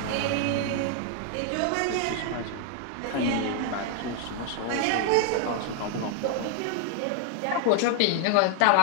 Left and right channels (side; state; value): both; different; correlation 0.00